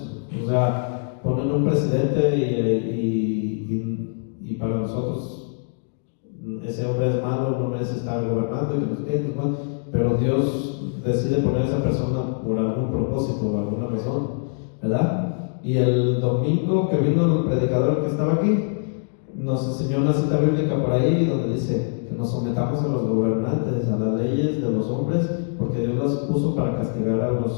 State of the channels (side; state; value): right; silent; digital silence